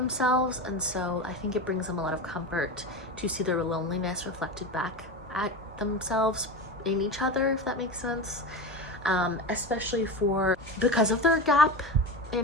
and so I think it brings them a lot of comfort to see their loneliness reflected back at themselves in each other, if that makes sense. Especially because of their gap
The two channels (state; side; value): normal; both; correlation 0.25